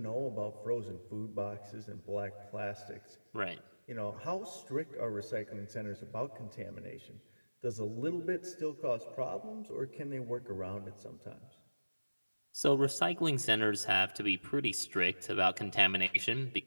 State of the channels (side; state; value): both; inverted; correlation -1.00